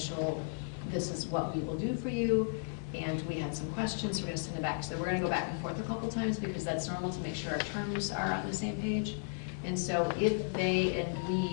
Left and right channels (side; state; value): right; silent; 55 dB below the other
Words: this is what we will do for you, and we had some questions, we're gonna send it back. So we're gonna go back and forth a couple times because that's normal to make sure our terms are on the same page. And so if they and